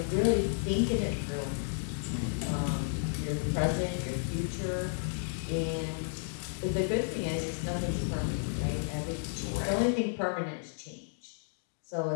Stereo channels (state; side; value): silent; right; digital silence